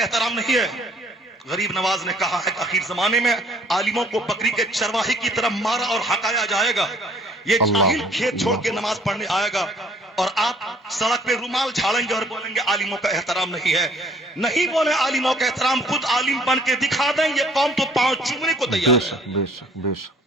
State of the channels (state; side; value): normal; both; correlation 0.58